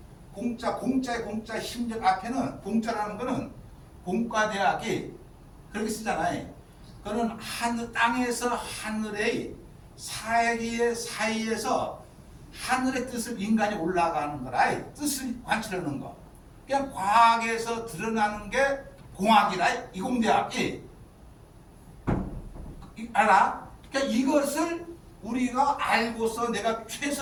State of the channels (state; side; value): identical; both; correlation 1.00